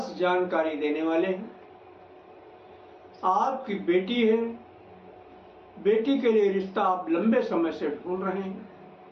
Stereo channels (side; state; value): both; identical; correlation 1.00